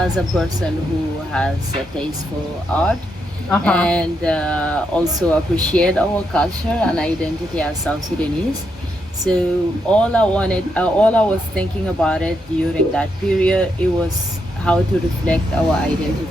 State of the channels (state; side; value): normal; both; correlation 0.80